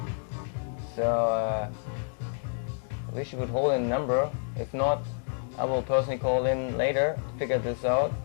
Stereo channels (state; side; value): silent; right; digital silence